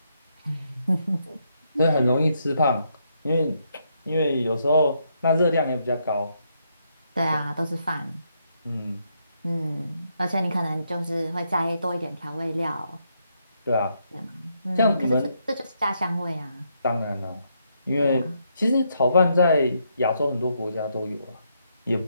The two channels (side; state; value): both; inverted; correlation -0.77